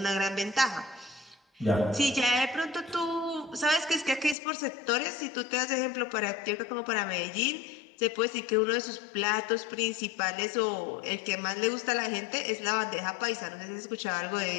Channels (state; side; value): drops out; right; at 4.4 s